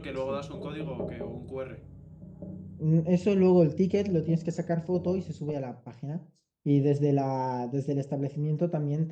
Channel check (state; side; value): identical; both; correlation 1.00